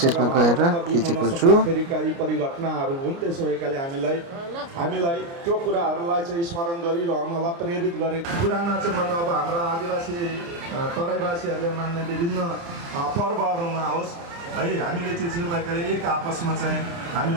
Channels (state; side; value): late; left; 29 ms